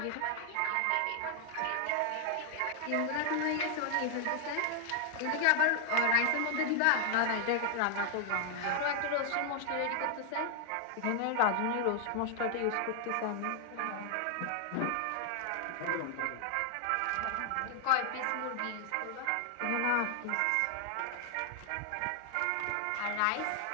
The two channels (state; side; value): different; both; correlation 0.00